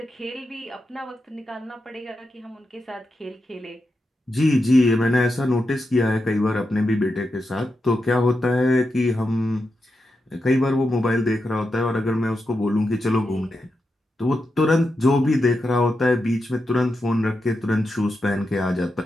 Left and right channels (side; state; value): both; normal; correlation 0.87